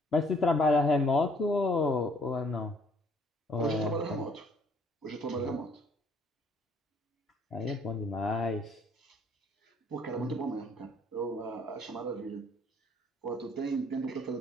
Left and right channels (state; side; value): normal; both; correlation 0.62